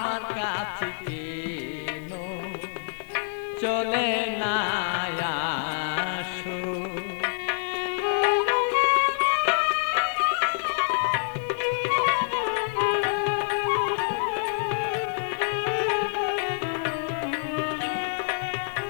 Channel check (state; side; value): silent; right; digital silence